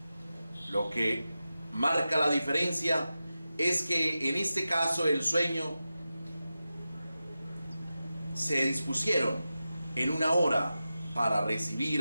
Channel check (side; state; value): both; inverted; correlation -0.93